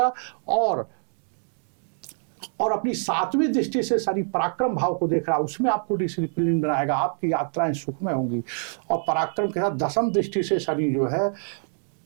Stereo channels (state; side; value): silent; left; 61 dB below the other